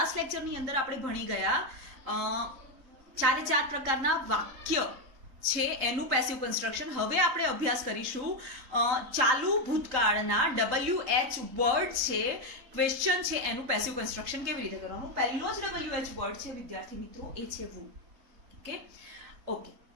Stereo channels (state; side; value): late; left; 3.9 ms